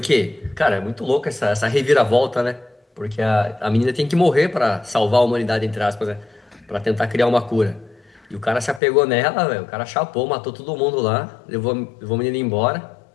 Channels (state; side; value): drops out; right; at 8.8 s